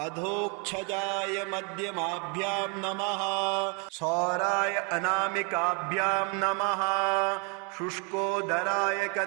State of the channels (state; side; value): quieter; left; 34.7 dB